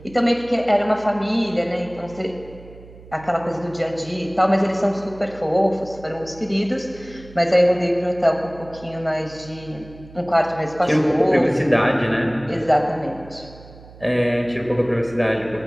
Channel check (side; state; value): right; noise; hum, 20 dB below the sound